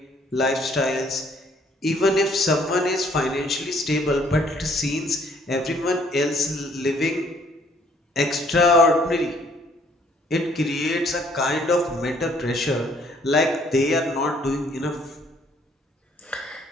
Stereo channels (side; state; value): both; normal; correlation 0.63